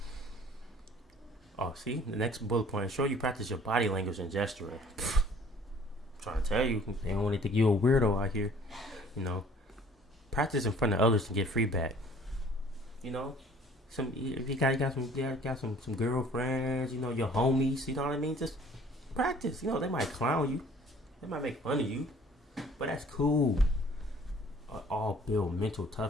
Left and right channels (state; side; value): normal; both; correlation 0.54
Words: Oh, see? The next bullet point. Show you practice your body language and gesturing. I'm trying to tell you. They don't want to think you a weirdo out here. Practice in front of others to get feedback. If you got some girlfriends, your homies, you know what I mean? Just practice. They might clown you. They might make fun of you. But that's cool. All build mental